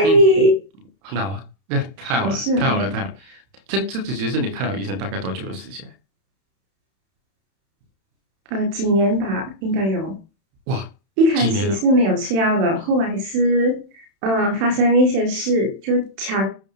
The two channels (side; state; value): left; late; 31 ms